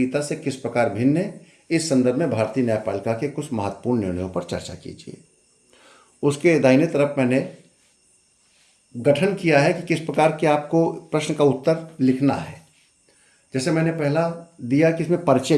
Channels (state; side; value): identical; both; correlation 1.00